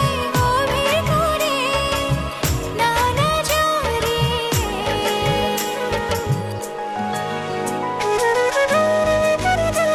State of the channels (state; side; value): identical; both; correlation 1.00